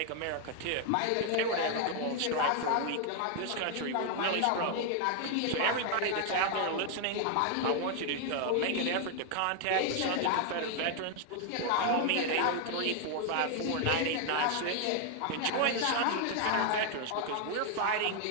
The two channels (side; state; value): both; different; correlation 0.00